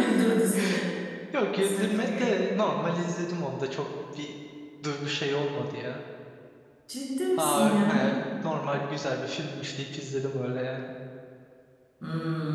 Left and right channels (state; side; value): identical; both; correlation 1.00